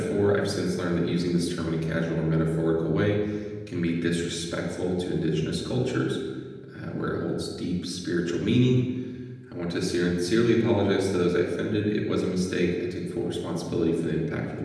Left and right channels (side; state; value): both; identical; correlation 1.00